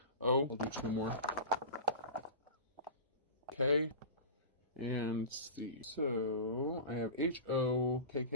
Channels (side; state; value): both; inverted; correlation -0.31